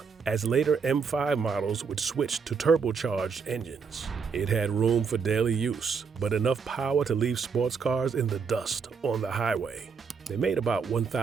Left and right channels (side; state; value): left; quieter; 5.7 dB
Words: as later M5 models would switch to turbocharged engines. It had room for daily use, but enough power to leave sports cars in the dust on the highway. They made about